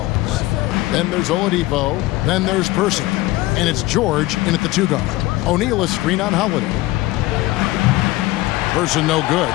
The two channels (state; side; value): quieter; right; 18.7 dB